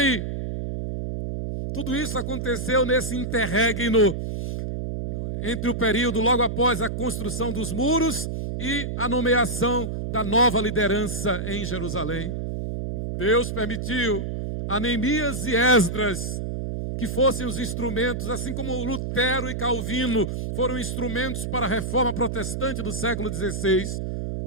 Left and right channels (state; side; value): noise; right; hum, 4 dB below the sound